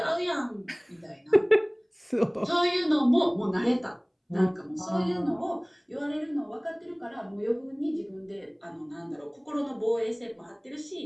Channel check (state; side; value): identical; both; correlation 1.00